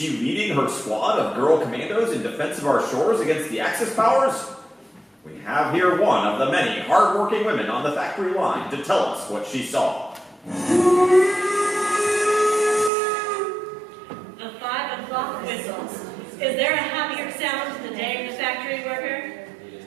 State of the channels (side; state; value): left; drops out; at 12.9 s